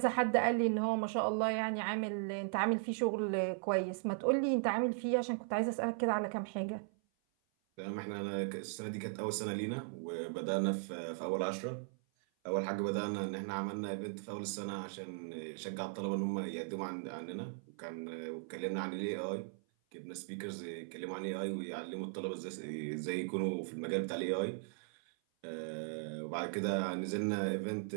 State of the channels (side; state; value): left; silent; 53 dB below the other